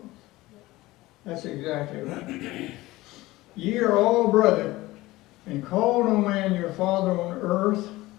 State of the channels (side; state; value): right; quieter; 18.8 dB